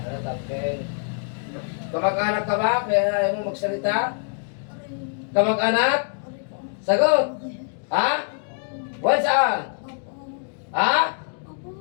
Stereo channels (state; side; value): silent; right; 61 dB below the other